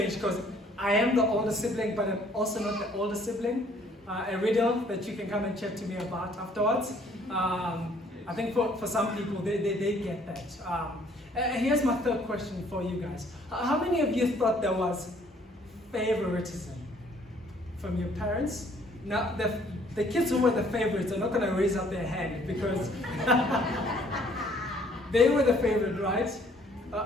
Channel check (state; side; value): normal; both; correlation 0.61